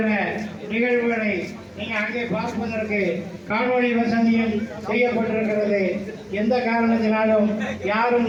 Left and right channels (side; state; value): both; identical; correlation 1.00